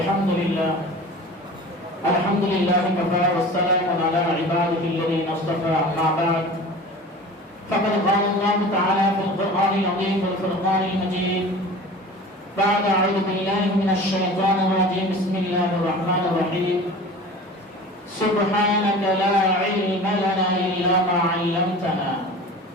لله كفى والسلام على عباده الذين اصطفى. أما بعد فقد قال الله تعالى في القرآن العظيم والفرقان المجيد بعد أعوذ بالله من الشيطان الرجيم بسم الله الرحمن الرحيم سبحانك لا علم لنا إلا ما علمتنا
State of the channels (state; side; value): normal; both; correlation 0.38